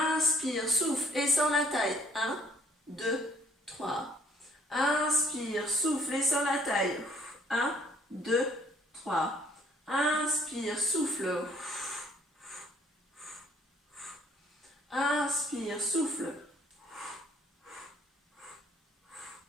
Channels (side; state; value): both; normal; correlation 0.62